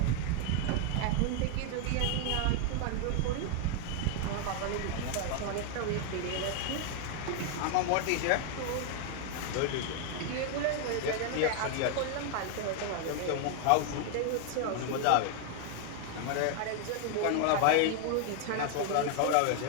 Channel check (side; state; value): both; different; correlation 0.00